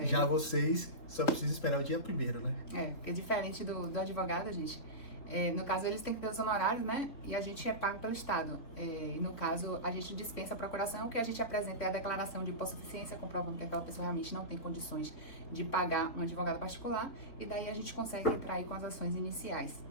Já vocês só precisam esperar o dia primeiro, né? Porque diferente do advogado, gente, no caso eles têm que ter os honorários, né? E a gente é pago pelo Estado. E no caso, a gente dispensa a procuração, o que a gente apresenta é a declaração de hipossuficiência, comprovando que aquela pessoa realmente não tem condições de pagar um advogado particular, e daí a gente consegue entrar aí com as ações iniciais,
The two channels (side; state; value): right; late; 3.8 ms